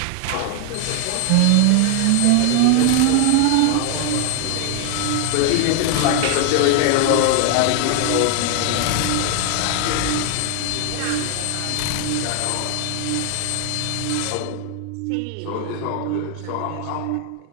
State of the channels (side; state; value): both; different; correlation 0.00